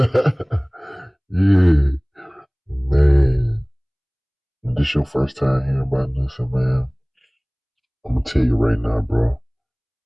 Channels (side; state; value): both; identical; correlation 1.00